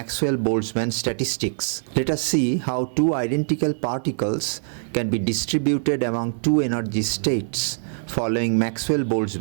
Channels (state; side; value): silent; left; 59 dB below the other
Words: Boltzmann statistics. Let us see how two identical particles can be distributed among two energy states following Maxwell